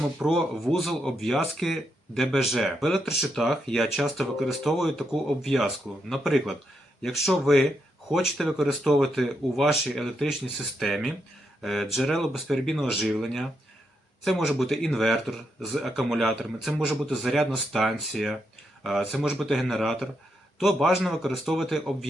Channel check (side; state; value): both; normal; correlation 0.81